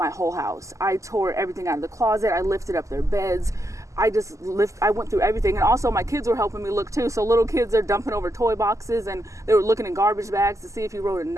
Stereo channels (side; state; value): left; late; 0.16 ms